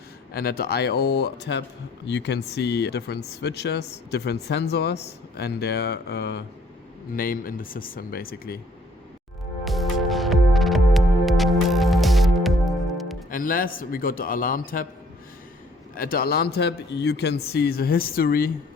And at the I/O tab, you can see different switches, different sensors, and their name in the system, basically. And last, we got the alarm tab. At the alarm tab, you can see the history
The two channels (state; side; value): normal; both; correlation 0.61